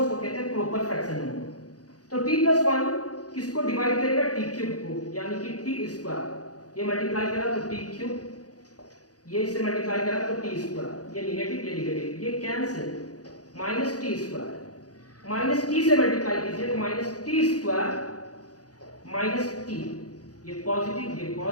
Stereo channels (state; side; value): late; right; 0.68 ms